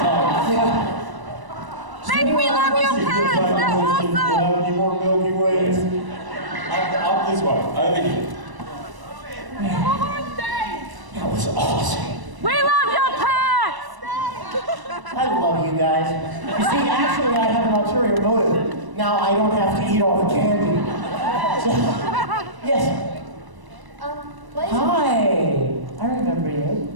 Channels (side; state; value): left; late; 1.0 ms